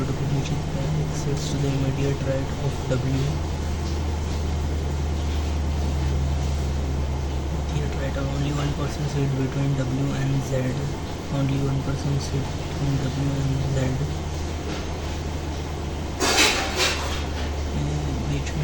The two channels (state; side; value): identical; both; correlation 1.00